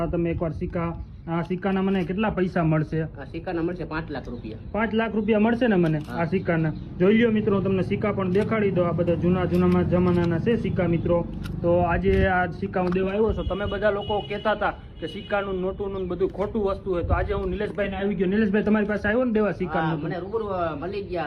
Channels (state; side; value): identical; both; correlation 1.00